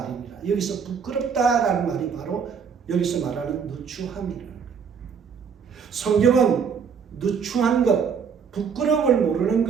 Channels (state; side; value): quieter; left; 6.5 dB